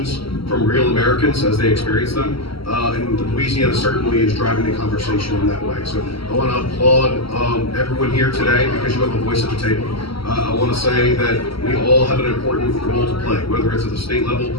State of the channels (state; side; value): late; right; 0.75 ms